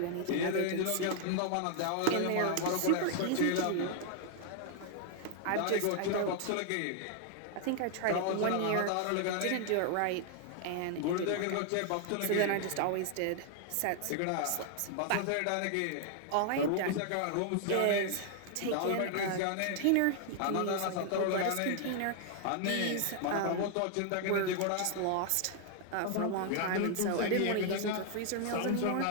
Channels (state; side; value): different; both; correlation 0.00